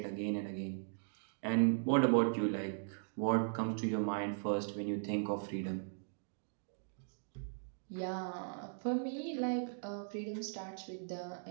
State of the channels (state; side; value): silent; left; digital silence